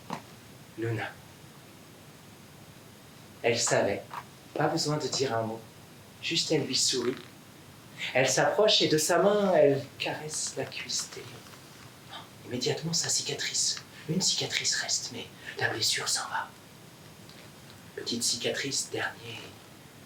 Luna. Elle savait, pas besoin de dire un mot, juste elle lui sourit. Elle s'approche et de sa main, elle caresse la cuisse d'Elio. Immédiatement, sa cicatrice. Une cicatrice reste, mais la blessure s'en va. Petite cicatrice,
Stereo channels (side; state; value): both; identical; correlation 1.00